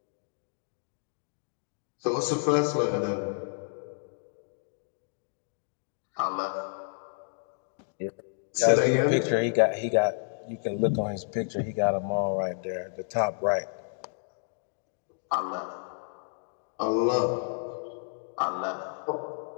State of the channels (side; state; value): right; silent; digital silence